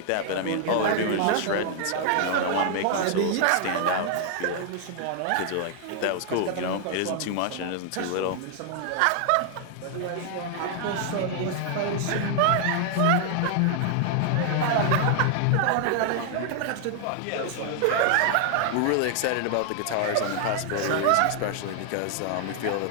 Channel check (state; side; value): different; both; correlation 0.00